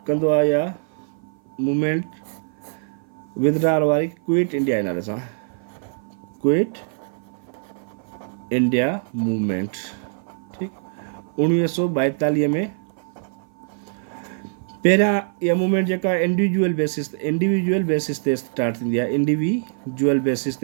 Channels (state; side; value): silent; left; 55 dB below the other